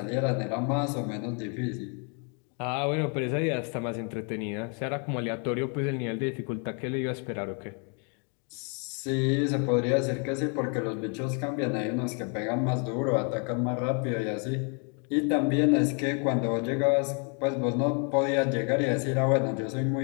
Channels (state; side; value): quieter; right; 38.1 dB